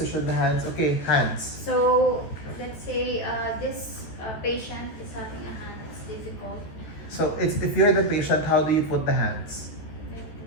the hands. Okay, hands. So let's say this patient is having a hand. It's difficult. So, if you're the patient, how do you put the hands? Like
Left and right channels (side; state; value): right; late; 14 ms